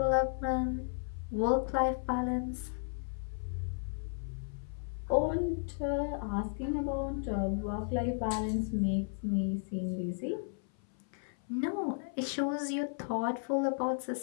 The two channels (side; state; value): right; silent; 55 dB below the other